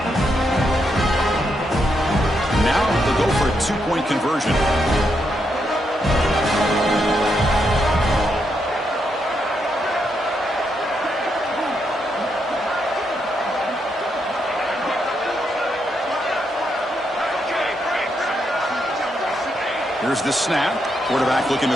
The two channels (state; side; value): normal; both; correlation 0.80